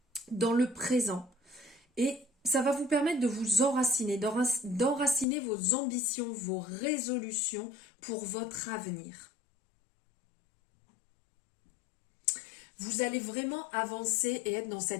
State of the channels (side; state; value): right; drops out; at 5.2 s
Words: dans le présent et ça va vous permettre de vous enraciner, d'enraciner vos ambitions, vos résolutions pour votre avenir. Vous allez vraiment avancer et être dans